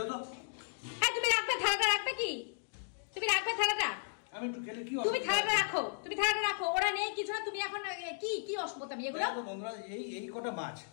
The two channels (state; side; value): silent; right; digital silence